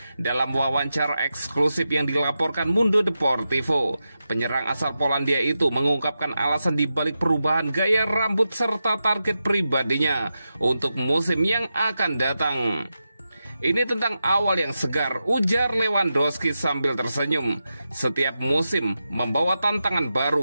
Dalam wawancara eksklusif yang dilaporkan Mundo Deportivo, penyerang asal Polandia itu mengungkapkan alasan dibalik perubahan gaya rambut serta target pribadinya untuk musim yang akan datang. Ini tentang awal yang segar, ujar Lewandowski sambil tersenyum. Setiap musim membawa tantangan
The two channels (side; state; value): both; inverted; correlation -0.90